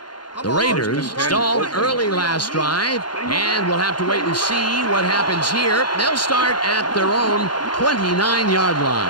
The Raiders stalled early last drive, and we'll have to wait and see what happens here. They'll start at their own 29-yard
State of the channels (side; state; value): right; late; 0.71 ms